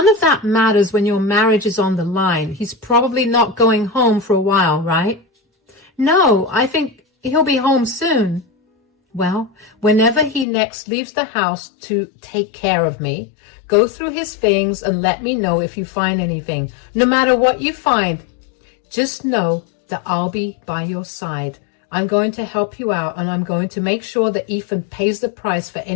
of that matters when your marriage is on the line. He's probably not going home for a while, right?" "No, I think he'll be home soon." "Well, whenever he next leaves the house to take care of me, go through his things and let me know if you find anything. No matter what you find, just know that I'll be by your side. I'm going to help you out, and I'm going to make sure that Ethan pays the price for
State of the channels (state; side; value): drops out; right; at 10.5 s